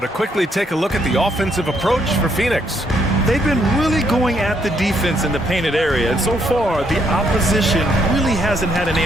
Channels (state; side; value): normal; both; correlation 0.73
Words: quickly take a look at the offensive approach for Phoenix. They've been really going at the defense in the painted area, and so far the opposition really hasn't had an